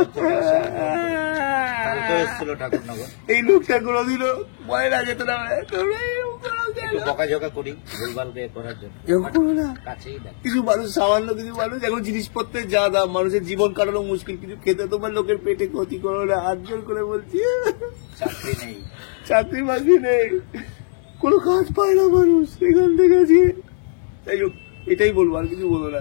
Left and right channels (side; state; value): right; silent; digital silence